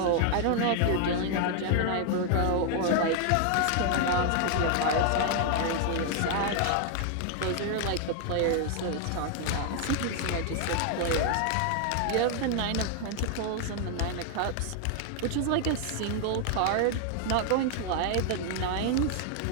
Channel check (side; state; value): both; different; correlation 0.00